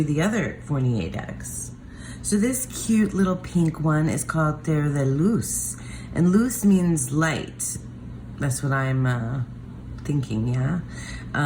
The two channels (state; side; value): identical; both; correlation 1.00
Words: the other Fornier decks. So this cute little pink one is called Tarot de Luz. And luz means light. That's what I'm thinking, yeah?